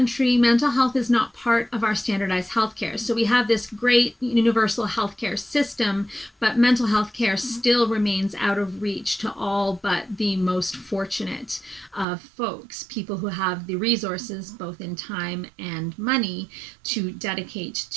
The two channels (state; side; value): drops out; left; at 12.1 s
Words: mental health is not part of our standardized healthcare. So we have this great universal healthcare system, but mental health care still remains out of reach to all but the most fortunate of folks, people who have the resources, both in time and money, to dedicate